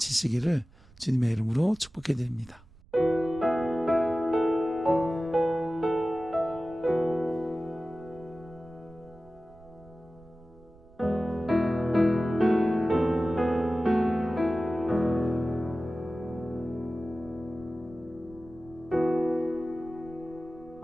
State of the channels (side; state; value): right; noise; rumble, 24 dB below the sound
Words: 주님의 이름으로 축복해 드립니다.